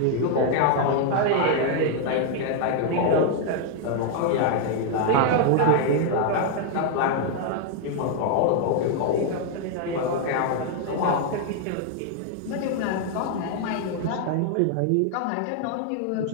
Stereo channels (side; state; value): both; different; correlation 0.00